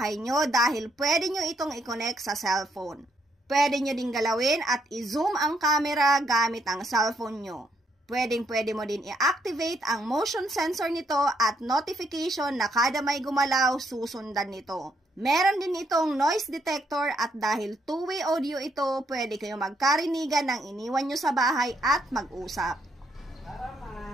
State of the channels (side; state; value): both; normal; correlation 0.74